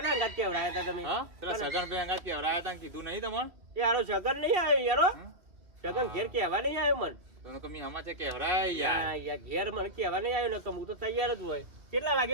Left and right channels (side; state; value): left; late; 2.5 ms